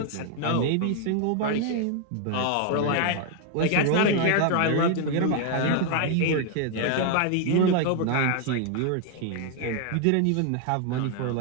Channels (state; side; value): different; both; correlation 0.00